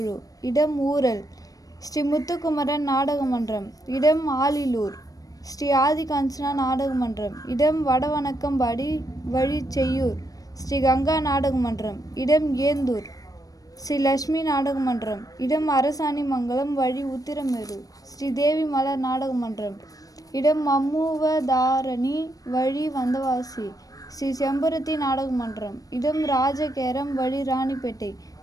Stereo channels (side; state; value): right; late; 0.18 ms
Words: இடம் ஊரல். ஸ்ரீ முத்துக்குமரன் நாடக மன்றம், இடம் ஆலிலூர். ஸ்ரீ ஆதிகாஞ்சனா நாடக மன்றம், இடம் வடவணக்கம்பாடி, வழி செய்யூர். ஸ்ரீ கங்கா நாடக மன்றம், இடம் ஏந்தூர். ஸ்ரீ லட்சுமி நாடக மன்றம், இடம் அரசாணிமங்கலம், வழி உத்திரமேரூர். ஸ்ரீ தேவி மலர் நாடக மன்றம், இடம் மம்முவதாரணி, வழி வந்தவாசி. ஸ்ரீ செம்பருத்தி நாடக மன்றம், இடம் ராஜகேரம், வழி ராணிப்பேட்டை.